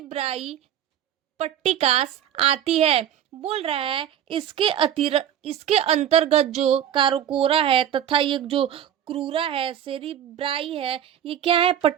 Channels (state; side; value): quieter; left; 10.2 dB